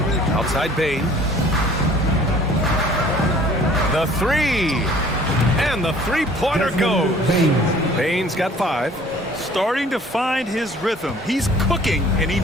Outside Bane. The 3. And the three-pointer goes. Bane's got 5. Starting to find his rhythm. He's cooking, and he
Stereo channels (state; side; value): normal; both; correlation 0.52